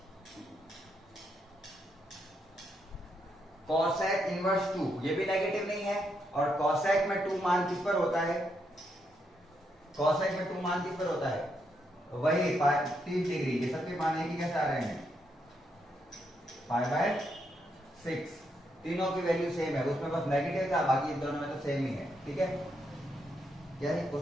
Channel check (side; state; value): both; normal; correlation 0.79